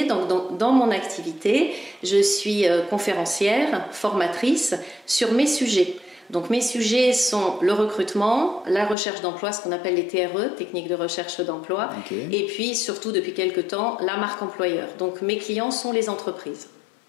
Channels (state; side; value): drops out; right; at 9.0 s